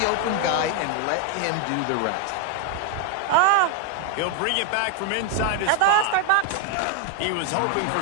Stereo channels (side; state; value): both; different; correlation 0.01